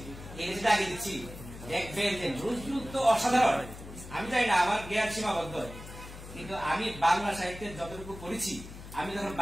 এই লেখাটা আগে দিচ্ছি, দেখবেন যে নজরুল তো অসাধারণ। আমি জানি না, আমার জ্ঞান সীমাবদ্ধ, কিন্তু আমি বাংলা সাহিত্যের যতটুকু পড়েছি, আমি যখন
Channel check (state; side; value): noise; left; hum, 14 dB below the sound